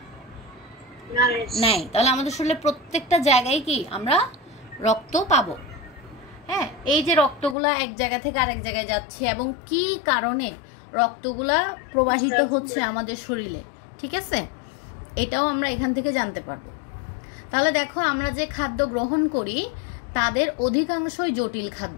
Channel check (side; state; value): right; drops out; at 7.6 s